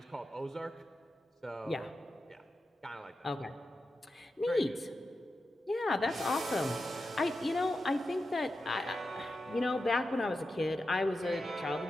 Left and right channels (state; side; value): normal; both; correlation 0.90